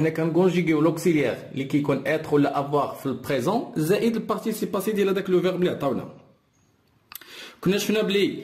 كنكونجوغيو لوكسيليير اللي كيكون être ولا avoir في البريزون زائد البارتيسيب باسي ديال هذاك لو فيرب اللي عطاونا. كنا شفنا بلي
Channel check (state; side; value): identical; both; correlation 1.00